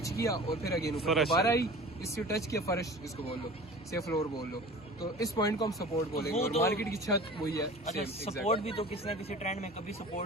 किया और फिर अगेन ऊपर दोबारा आई, इससे टच किया फर्श इसको बोल लो, से फ्लोर बोल लो, तो इस पॉइंट को हम सपोर्ट बोलेंगे। और मार्केट की छत वही है। अच्छा, सपोर्ट भी तो किसी ना किसी ट्रेंड में कभी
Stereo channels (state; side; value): normal; both; correlation 0.40